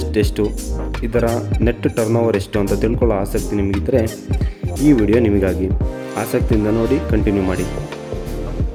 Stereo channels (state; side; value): identical; both; correlation 1.00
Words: ಎಷ್ಟು, ಇದರ ನೆಟ್ ಟರ್ನ್ ಓವರ್ ಎಷ್ಟು ಅಂತ ತಿಳ್ಕೊಳ್ಳೋ ಆಸಕ್ತಿ ನಿಮಗಿದ್ದರೆ ಈ ವಿಡಿಯೋ ನಿಮಗಾಗಿ. ಆಸಕ್ತಿಯಿಂದ ನೋಡಿ, ಕಂಟಿನ್ಯೂ ಮಾಡಿ.